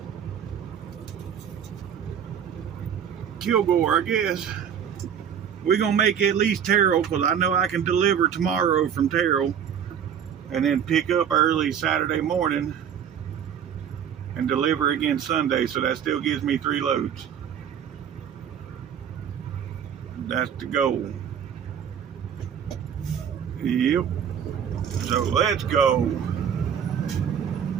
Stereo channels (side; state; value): left; quieter; 8.4 dB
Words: Kilgore, I guess. We're gonna make at least Terrell, because I know I can deliver tomorrow from Terrell and then pick up early Saturday morning and deliver again Sunday. So that still gives me 3 loads. That's the goal. Yep. So let's go.